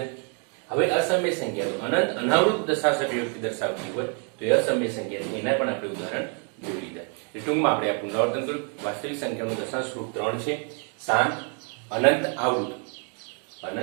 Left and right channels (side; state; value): left; quieter; 39.9 dB